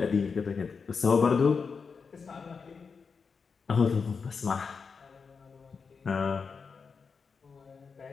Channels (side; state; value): right; quieter; 5.3 dB